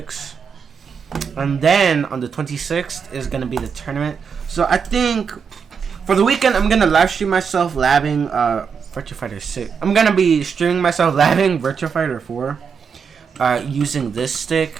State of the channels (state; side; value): quieter; left; 6.3 dB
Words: And then on the 26th is gonna be the tournament. So I think for the weekend I'm gonna live stream myself labbing Virtua Fighter 6. I'm gonna be streaming myself labbing Virtua Fighter 4 using this